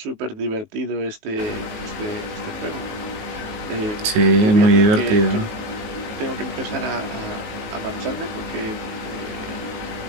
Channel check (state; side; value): late; left; 19 ms